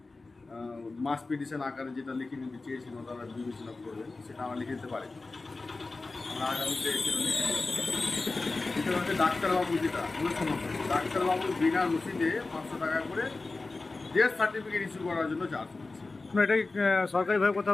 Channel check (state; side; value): quieter; right; 3.5 dB